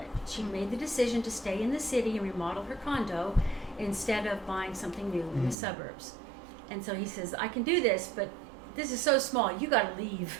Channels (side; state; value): left; drops out; at 5.6 s